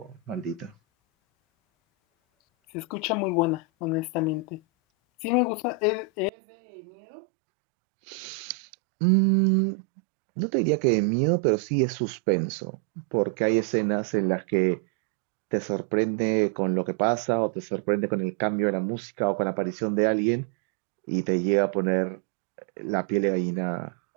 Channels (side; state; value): left; drops out; at 6.3 s